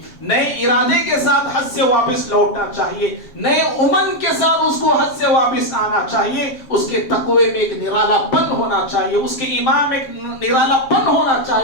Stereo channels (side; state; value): right; late; 7.3 ms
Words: نئے ارادے کے ساتھ حج سے واپس لوٹنا چاہیے, نئے امن کے ساتھ اس کو حج سے واپس آنا چاہیے. اس کے تقوی میں ایک نرالا پن ہونا چاہیے, اس کے ایمان میں ایک نرالا پن ہونا